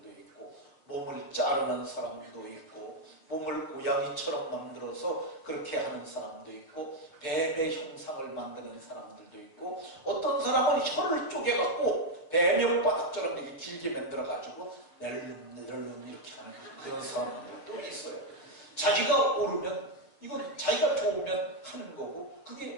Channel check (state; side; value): late; right; 6.4 ms